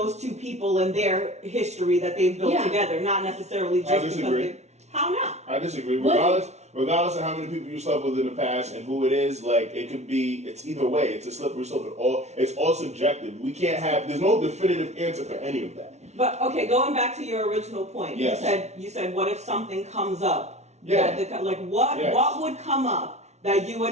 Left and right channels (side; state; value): left; late; 0.32 ms